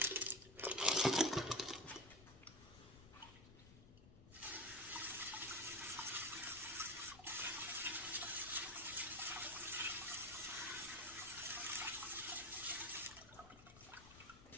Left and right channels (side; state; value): left; noise; rumble, 19 dB below the sound